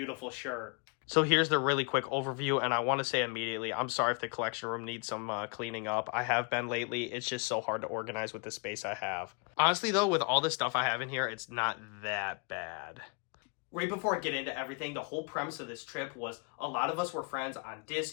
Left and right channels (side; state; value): right; quieter; 34.2 dB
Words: shirt. So here's the really quick overview, and I want to say immediately, I'm sorry if the collection room needs some cleaning up. I have been lately. It's just so hard to organize with the space I have. Honestly, though, with all the stuff I have in here, it's not that bad. Right before I get into everything, the whole premise of this trip was a lot of us were friends on